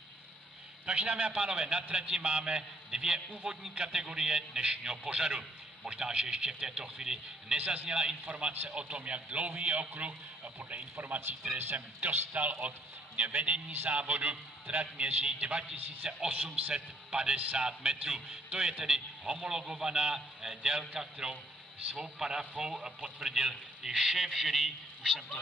Takže dámy a pánové, na trati máme dvě úvodní kategorie dnešního pořadu. Možná, že ještě v této chvíli nezazněla informace o tom, jak dlouhý je okruh. Podle informací, které jsem dostal od vedení závodu, trať měří 2850 metrů. To je tedy homologovaná délka, kterou svou parafou potvrdil i šéf jury, už jsem to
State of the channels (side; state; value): both; normal; correlation 0.66